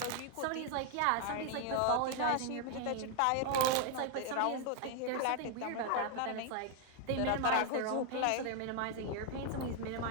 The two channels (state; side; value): different; both; correlation 0.00